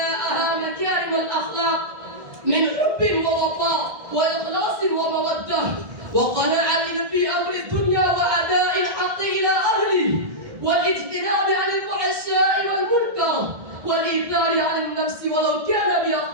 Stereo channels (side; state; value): left; late; 1.6 ms